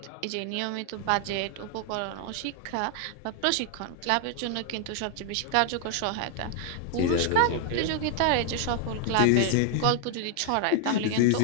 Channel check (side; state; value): both; different; correlation 0.00